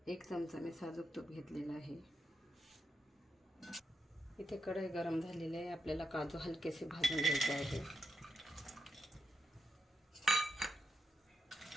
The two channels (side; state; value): both; normal; correlation 0.84